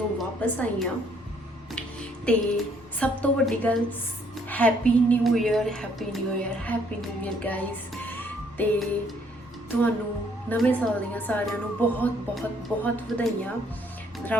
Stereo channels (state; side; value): normal; both; correlation 0.66